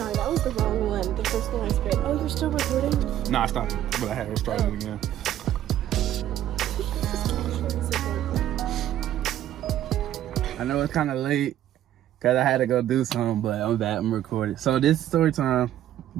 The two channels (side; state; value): left; quieter; 12.1 dB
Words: That was the wrong one. The first one I sprayed. Oh, you're still recording? Nah, I stopped it, but I had to start it again. I know it's kind of late because I had to go do something, but I'm back. I'm recording. So this is story time.